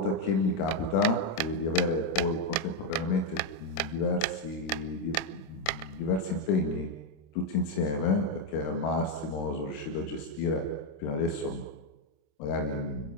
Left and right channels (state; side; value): late; right; 26 ms